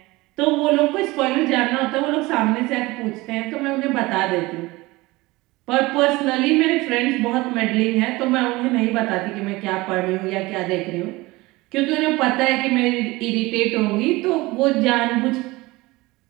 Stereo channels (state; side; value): quieter; left; 21.2 dB